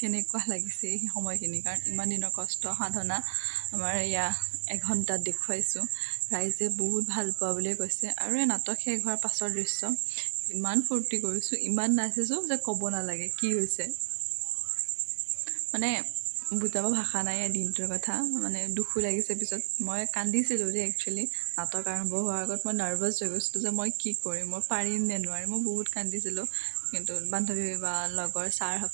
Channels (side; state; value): left; silent; 57 dB below the other